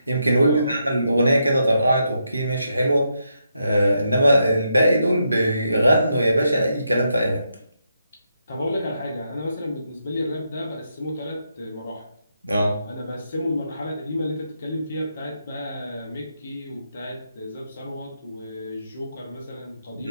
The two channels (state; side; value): inverted; both; correlation -0.81